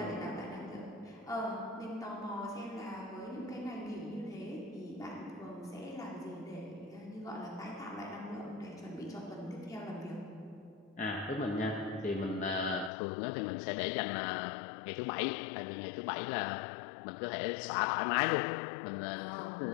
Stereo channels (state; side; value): drops out; right; at 12.9 s